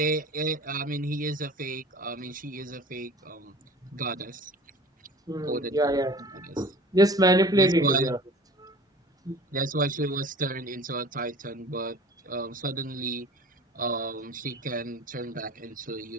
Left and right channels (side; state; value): both; normal; correlation 0.42